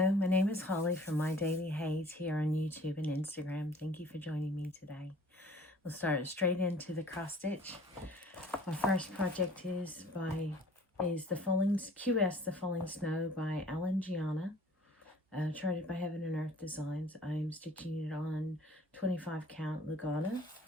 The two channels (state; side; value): normal; both; correlation 0.51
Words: my name is Holly from My Daily HAED here on YouTube and Instagram. Thank you for joining me today. We'll start straight into the cross stitch. My first project is the Falling Snow by Alan Giana, charted by Heaven and Earth Designs. I'm stitching it on 25 count lugana,